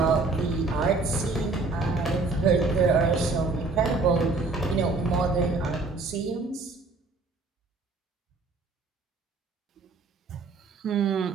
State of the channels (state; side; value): quieter; left; 3.7 dB